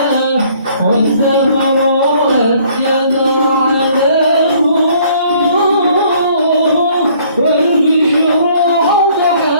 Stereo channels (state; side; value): inverted; both; correlation -0.60